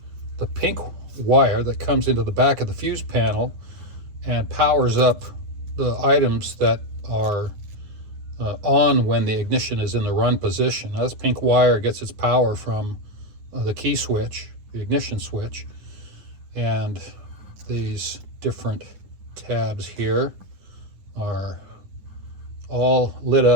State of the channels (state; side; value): late; left; 9.5 ms